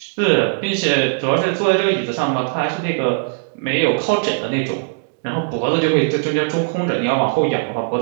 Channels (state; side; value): silent; left; digital silence